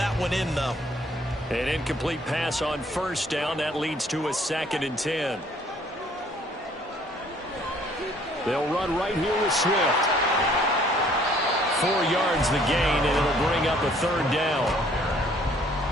one in, though. An incomplete pass on first down. That leads to a 2nd and 10. They'll run right here with Swift. 4 yards the gain, and it'll bring up a 3rd down.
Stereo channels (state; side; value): normal; both; correlation 0.60